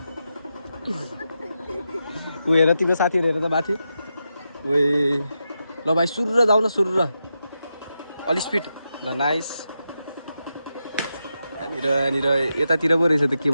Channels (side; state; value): both; inverted; correlation -0.87